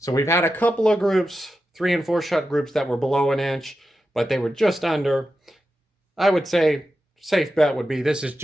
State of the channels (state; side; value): normal; both; correlation 0.90